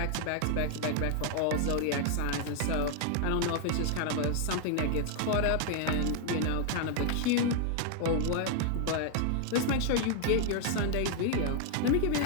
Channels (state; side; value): different; both; correlation 0.00